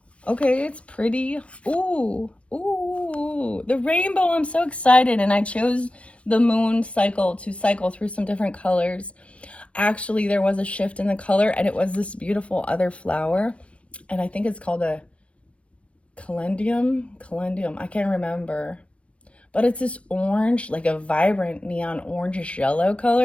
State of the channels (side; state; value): right; late; 0.061 ms